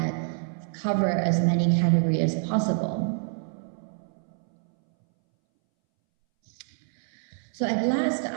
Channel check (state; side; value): silent; left; 60 dB below the other